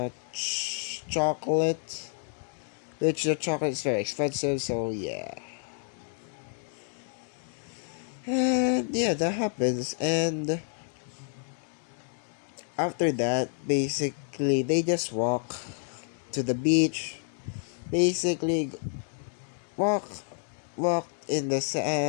chocolate, which the chocolate is very expensive, so yeah. And yeah, that happens. And after that, basically, they just walk to the beach. Basically, walk, walk in the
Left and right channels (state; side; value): silent; right; 55 dB below the other